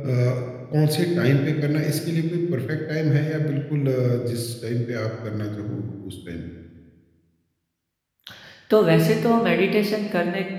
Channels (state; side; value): identical; both; correlation 1.00